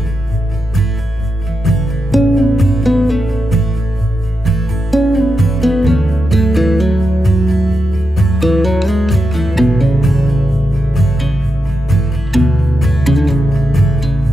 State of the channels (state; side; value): normal; both; correlation 0.87